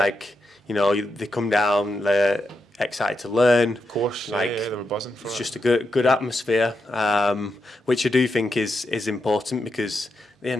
you know, they come down, they're excited to learn. Of course, Like, yeah, they were buzzing for it. It's just a good atmosphere, which I do think is important, because at the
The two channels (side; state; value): both; normal; correlation 0.85